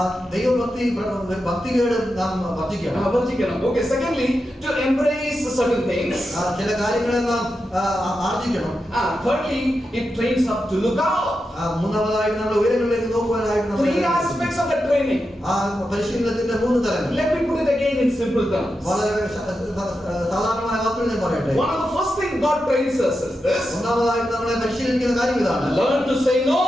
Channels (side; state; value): both; normal; correlation 0.88